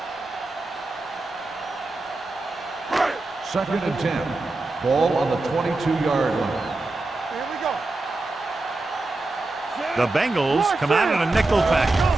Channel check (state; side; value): quieter; left; 3.1 dB